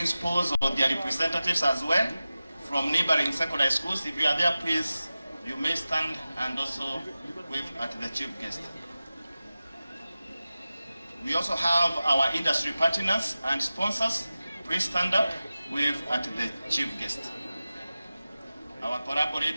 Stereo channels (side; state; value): both; inverted; correlation -0.96